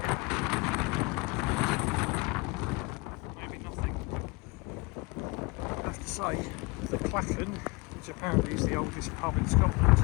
Say, the Killin, which apparently is the oldest pub in Scotland,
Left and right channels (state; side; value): quieter; right; 25.8 dB